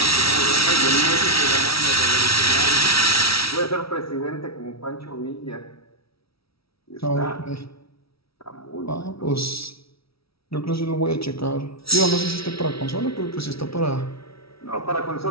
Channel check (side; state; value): right; late; 0.76 ms